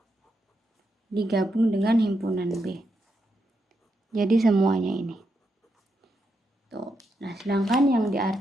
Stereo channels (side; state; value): both; normal; correlation 0.83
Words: digabung dengan himpunan B. Jadi semuanya ini. Tuh. Nah, sedangkan yang